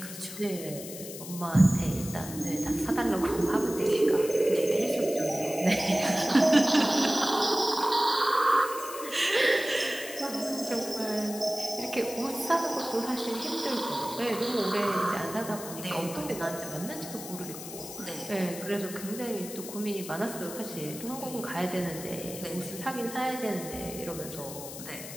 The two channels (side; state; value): left; noise; hiss, 11 dB below the sound